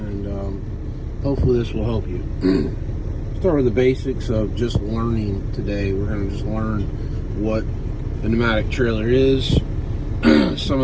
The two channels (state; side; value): identical; both; correlation 1.00